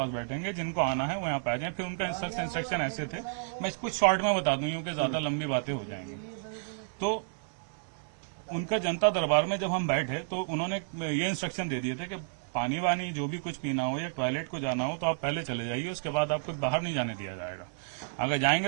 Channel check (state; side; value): silent; left; 57 dB below the other